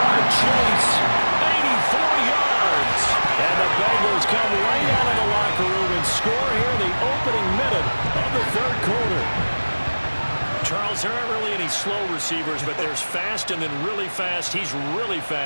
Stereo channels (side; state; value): both; inverted; correlation -1.00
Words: Chase. 84 yards. And the Bengals come right out of the locker room and score here in the opening minute of the third quarter. Charles, there aren't really any slow receivers, but there's fast and then really fast. He's really